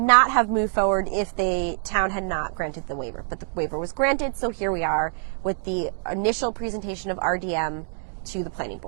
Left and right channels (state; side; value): silent; left; digital silence